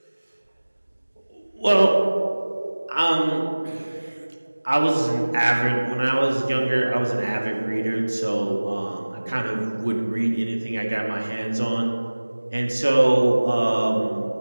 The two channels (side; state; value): both; inverted; correlation -1.00